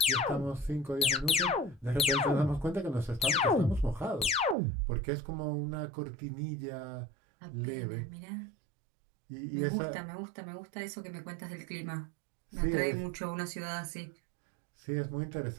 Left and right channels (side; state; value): left; drops out; at 4.5 s